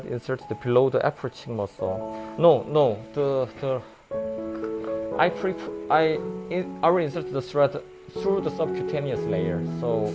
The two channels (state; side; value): identical; both; correlation 1.00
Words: inserted below the upper cheek muscle? No. I will insert the thread through the subcutaneous layer. So